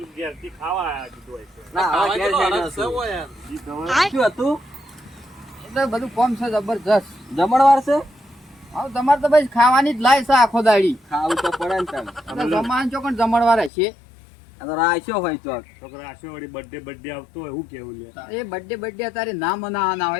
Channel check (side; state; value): right; drops out; at 13.7 s